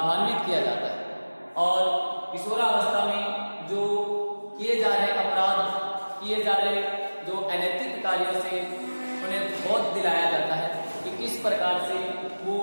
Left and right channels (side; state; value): both; inverted; correlation -1.00